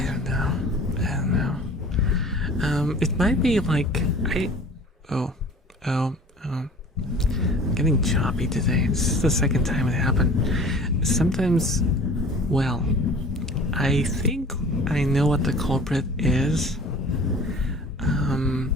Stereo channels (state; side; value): normal; both; correlation 0.45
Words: don't know. It might be like Oh, I'm getting choppy today. This is the second time it happened. Sometimes, well, I think I know what the culprit is.